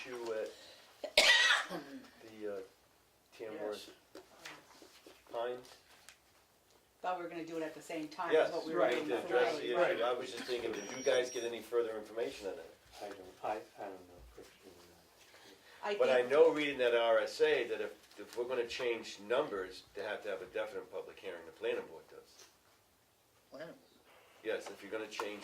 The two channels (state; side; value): identical; both; correlation 1.00